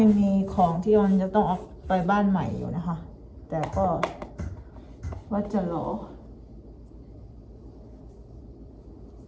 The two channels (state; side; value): identical; both; correlation 1.00